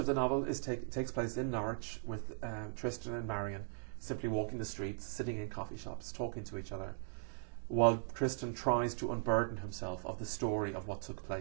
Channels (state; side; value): silent; left; digital silence